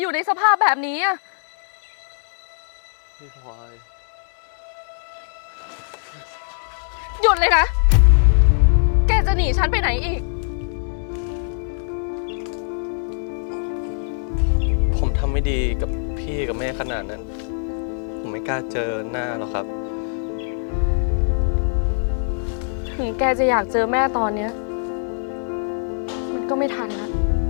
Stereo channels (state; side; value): silent; right; digital silence